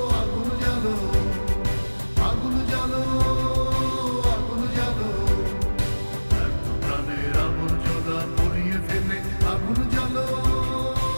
আগুন জ্বালো আগুন জ্বালো আগুন জ্বালো এত প্রাণের আবর্জনা পুড়িয়ে ফেলে আগুন জ্বালো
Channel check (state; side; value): inverted; both; correlation -1.00